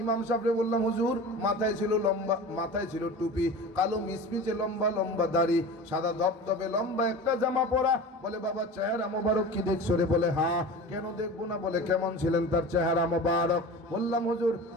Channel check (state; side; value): normal; both; correlation 0.34